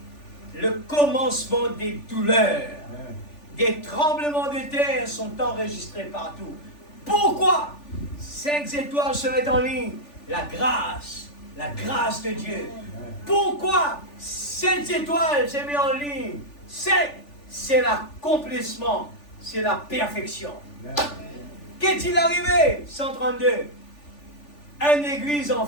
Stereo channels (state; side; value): late; right; 3.4 ms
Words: Le commencement des douleurs. Des tremblements de terre sont enregistrés partout. Pourquoi? 5 étoiles se mettent en ligne. La grâce de Dieu. Pourquoi 7 étoiles se mettent en ligne? 7, c'est l'accomplissement, c'est la perfection. Qu'est-il arrivé? 132. Une église